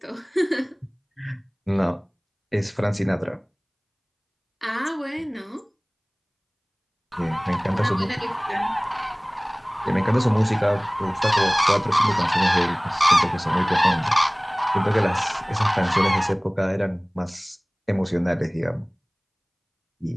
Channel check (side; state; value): both; identical; correlation 1.00